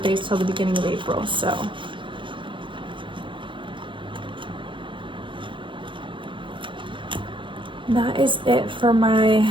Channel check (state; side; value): late; left; 0.24 ms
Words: till the beginning of April, so. That is it for my